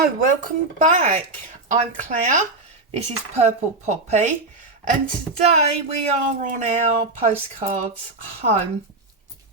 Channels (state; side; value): quieter; left; 3.2 dB